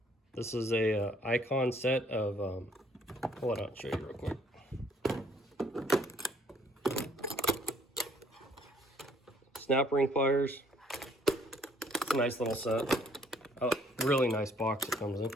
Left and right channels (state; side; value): normal; both; correlation 0.62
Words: this is a Icon set of, hold on, I'll show you real quick. Snap ring pliers. It's a nice little set. A really nice box it comes in.